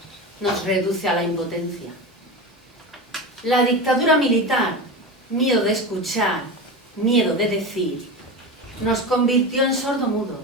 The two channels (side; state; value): both; normal; correlation 0.24